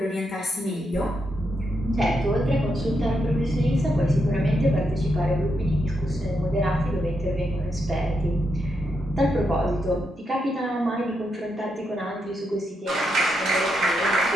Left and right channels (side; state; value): both; normal; correlation 0.82